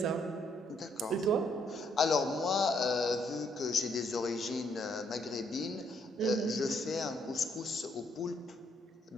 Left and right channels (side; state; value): both; normal; correlation 0.71